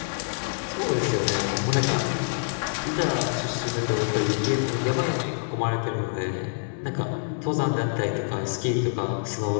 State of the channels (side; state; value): right; silent; digital silence